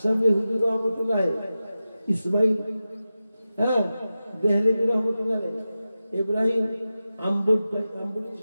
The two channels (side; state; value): both; inverted; correlation -0.93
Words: হুজুর রহমতুল্লাহ, ইসমাইল দেহলেভি রহমতুল্লাহ, ইব্রাহিম আম্বুটি